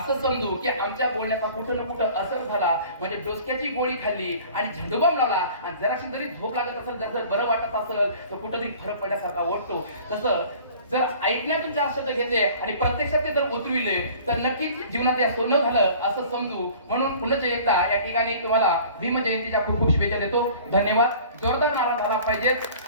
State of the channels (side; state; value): both; inverted; correlation -0.47